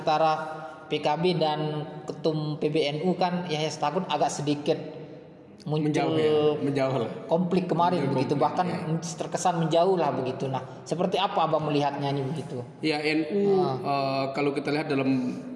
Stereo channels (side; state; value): both; identical; correlation 1.00